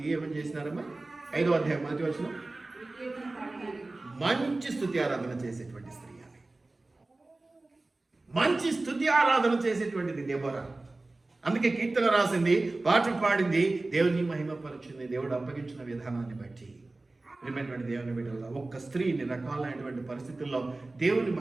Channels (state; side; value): quieter; left; 3.1 dB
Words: ఏమని చేసినారమ్మా? 5వ అధ్యాయం మొదటి వచనం, మంచి స్తుతి ఆరాధన చేసేటువంటి స్త్రీ ఆమె. మంచి స్తుతి ఆరాధన చేసేటువంటిది దెబోరా. అందుకే కీర్తన రాసింది, పాట పాడింది, దేవుని మహిమపరిచింది దేవుడు అప్పగించిన విధానాన్ని బట్టి. ప్రియమైనటువంటి దేవుని బిడ్డల, ఒక్క స్త్రీ ఇన్ని రకాలైనటువంటి పరిస్థితుల్లో దేవుని